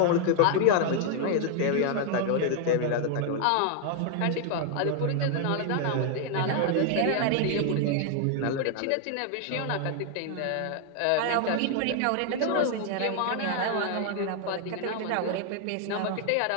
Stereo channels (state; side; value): different; both; correlation 0.00